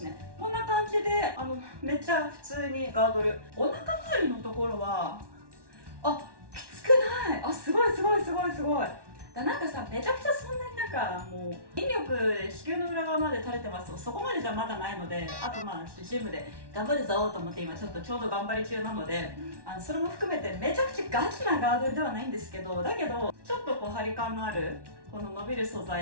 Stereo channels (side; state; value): left; late; 1.1 ms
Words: ね。こんな感じでめっちゃ普通にガードル、お腹周りのところはきつくない。すごいなんかさ、めちゃくちゃそんなになんかもう筋力子宮の裏側まで垂れてますと、そこまでじゃまだないので、あとまあジムで頑張るぞと思って今ちょっと頑張り中なので、それも含めてめちゃくちゃガチなガードルではないんですけど、だけどちょっとこう張り感のあるこの伸びる素